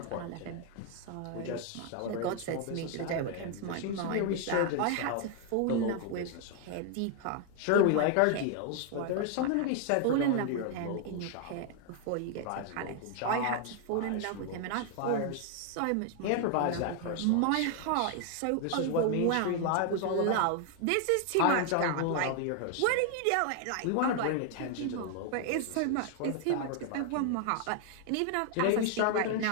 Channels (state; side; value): different; both; correlation 0.00